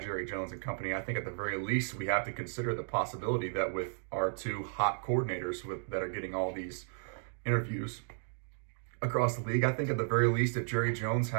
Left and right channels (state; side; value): silent; left; digital silence